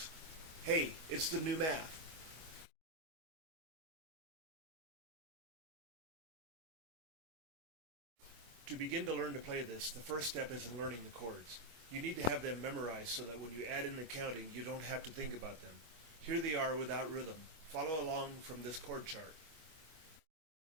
Hey, it's the new math. To begin to learn to play this, the first step is in learning the chords. You need to have them memorized so that when you add in the counting, you don't have to think about them. Here they are without rhythm. Follow along from this chord chart.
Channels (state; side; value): late; left; 25 ms